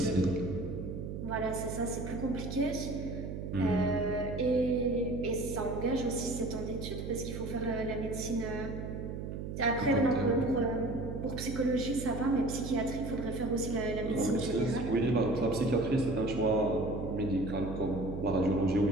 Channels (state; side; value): noise; right; hum, 6 dB below the sound